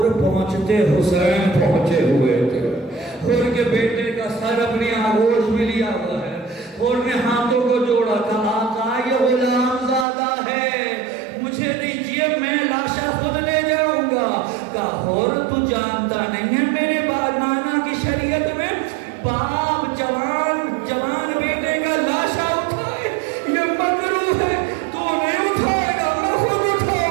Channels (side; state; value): left; drops out; at 10.1 s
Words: پہنچتے حسین پہنچے ہوئے تھے۔ حر کے بیٹے کا سر اپنی آغوش میں لیا ہوا ہے، حر نے ہاتھوں کو جوڑا، کہا آقا یہ غلام